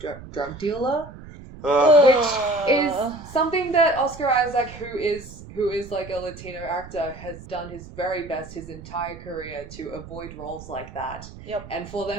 dealer. Which is something that Oscar Isaac, who is like a Latino actor, has done his very best his entire career to avoid roles like that. Yep. And for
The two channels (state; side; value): noise; right; rumble, 15 dB below the sound